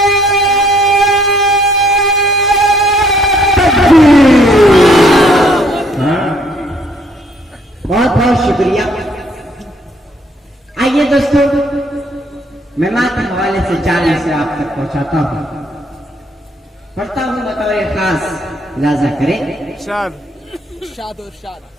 बहुत बहुत शुक्रिया। आइए दोस्तों, मैं मात्र हवाले से 4 से आप तक पहुंचाता हूं, पढ़ता हूं बतौर खास लाजा करें।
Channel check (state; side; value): normal; both; correlation 0.65